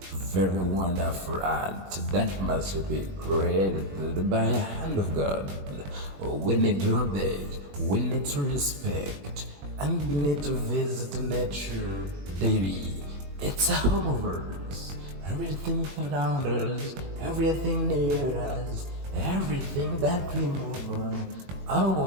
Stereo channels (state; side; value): late; left; 21 ms